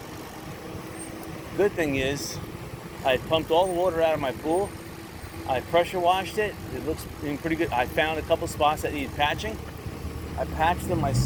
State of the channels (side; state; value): both; identical; correlation 1.00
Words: Good thing is I pumped all the water out of my pool. I pressure washed it. It looks pretty good. I found a couple spots that needed patching. I patched them